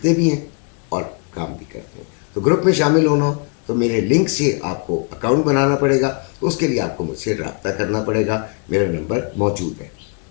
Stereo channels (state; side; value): quieter; right; 37.5 dB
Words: भी हैं और काम भी करते हैं। तो ग्रुप में शामिल होना हो तो मेरे लिंक से आपको अकाउंट बनाना पड़ेगा, उसके लिए आपको मुझसे रब्ता करना पड़ेगा, मेरा नंबर मौजूद है,